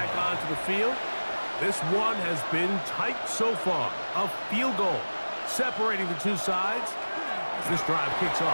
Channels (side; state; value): both; inverted; correlation -1.00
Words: onto the field. This one has been tight so far. A field goal separating the two sides. As this drive kicks